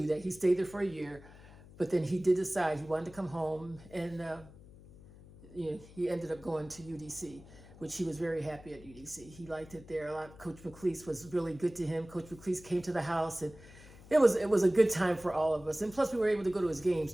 that. He stayed there for a year, but then he did decide he wanted to come home, and he ended up going to UDC, which he was very happy at UDC. He liked it there a lot. Coach McLeese was really good to him. Coach McLeese came to the house, and it was a good time for all of us. And plus, we were able to go to his games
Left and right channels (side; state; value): left; noise; hum, 20 dB below the sound